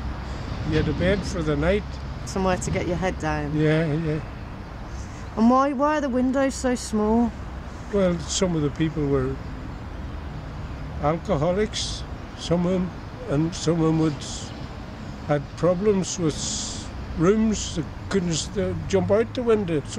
You had a bed for the night. Somewhere to get your head down? Yeah. And why are the windows so small? Well, some of the people were alcoholics, some of them, and some of them had problems with rooms. They couldn't jump out the window,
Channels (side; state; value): both; identical; correlation 1.00